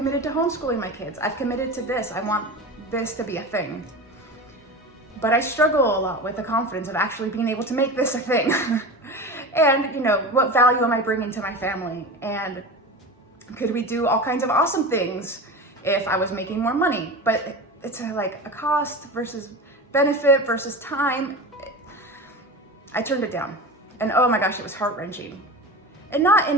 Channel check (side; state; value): both; normal; correlation 0.29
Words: to homeschooling my kids. I've committed to this. I want this to be a thing. But I struggle a lot with the confidence of actually being able to make this a thing. And, you know, what value am I bringing to my family? And could we do all kinds of awesome things if I was making more money? But it's like a cost versus benefit versus time. I turned it down. And oh my gosh, it was heart-wrenching. And not